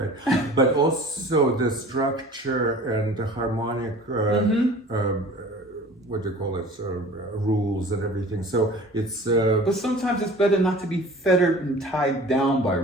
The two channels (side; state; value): both; normal; correlation 0.44